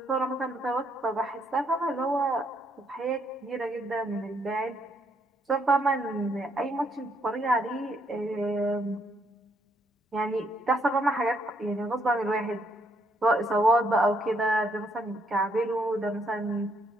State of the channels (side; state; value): both; normal; correlation 0.72